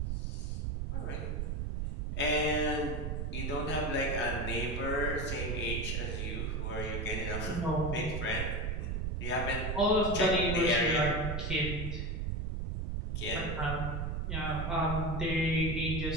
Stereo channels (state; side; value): noise; right; rumble, 1 dB below the sound